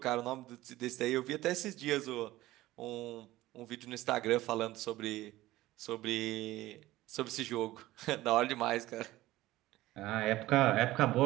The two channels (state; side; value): quieter; left; 16.8 dB